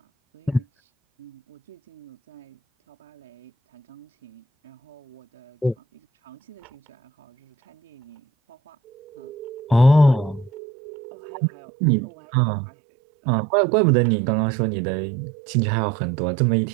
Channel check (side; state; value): left; drops out; at 10.5 s